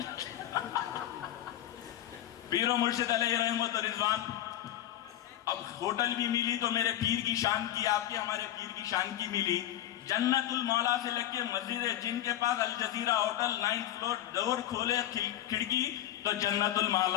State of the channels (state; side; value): quieter; right; 12.8 dB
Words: پیر و مرشد علیہ رحمت و رضوان، اب ہوٹل بھی ملی تو میرے پیر کی شان کی، آپ کے ہمارے پیر کی شان کی ملی. جنت المولا سے لگ کے مسجد جن کے پاس الجزیرہ ہوٹل 9th فلور، ڈور کھولے کھڑکی تو جنت